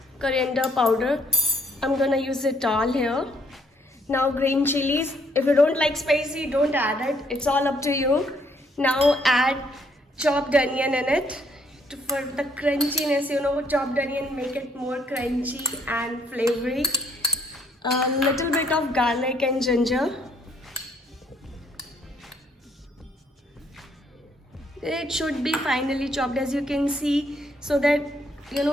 coriander powder. I'm gonna use it all here. Now green chilies. If you don't like spicy, don't add it. It's all up to you. Now add chopped onion in it for the crunchiness. Chopped onion make it more crunchy and flavory. A little bit of garlic and ginger. It should be finely chopped, as you can see, so that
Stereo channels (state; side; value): normal; both; correlation 0.67